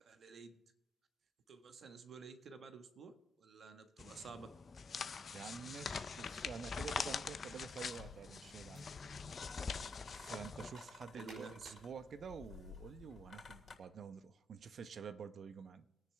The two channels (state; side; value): normal; both; correlation 0.77